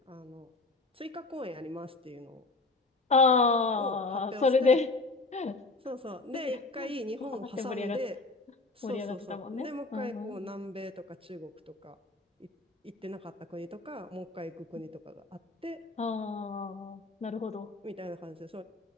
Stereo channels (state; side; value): quieter; right; 3.4 dB